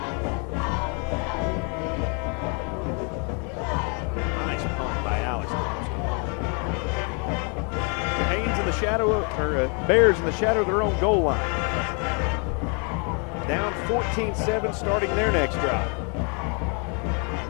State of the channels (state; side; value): quieter; right; 36.4 dB